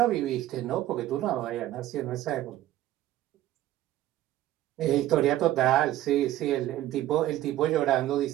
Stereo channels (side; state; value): left; quieter; 14.1 dB